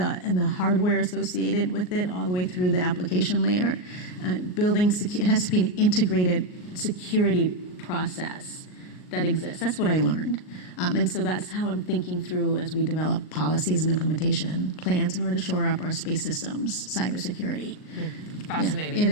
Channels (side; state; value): right; late; 38 ms